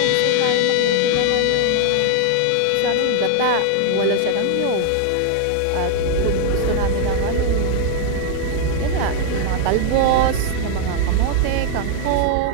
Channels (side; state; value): both; different; correlation 0.00